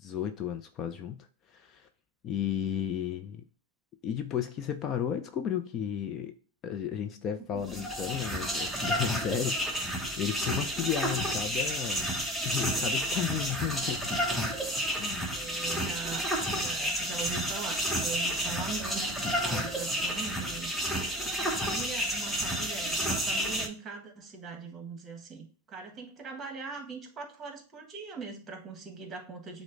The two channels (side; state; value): both; normal; correlation 0.36